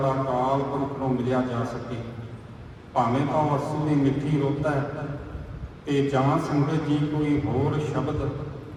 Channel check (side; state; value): both; identical; correlation 1.00